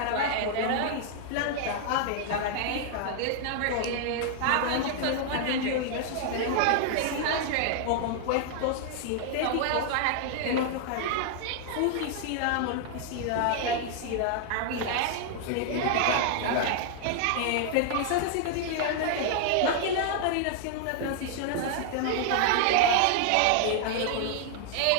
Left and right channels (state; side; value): different; both; correlation 0.00